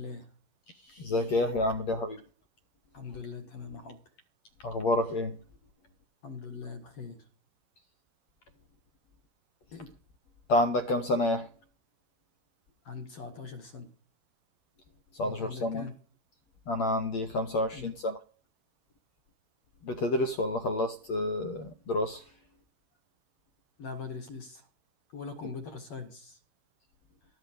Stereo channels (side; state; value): right; late; 8.8 ms